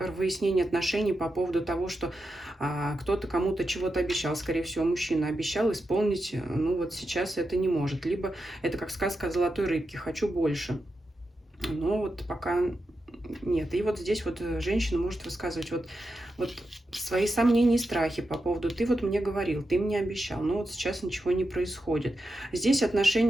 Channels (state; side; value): normal; both; correlation 0.88